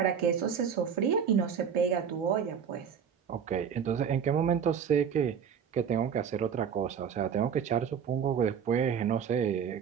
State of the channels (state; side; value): quieter; left; 7.4 dB